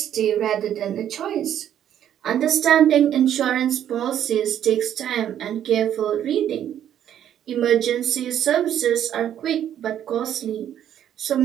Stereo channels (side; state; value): left; quieter; 10.4 dB